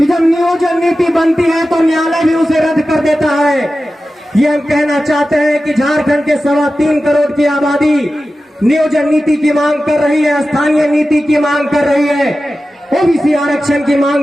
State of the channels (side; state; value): both; normal; correlation 0.94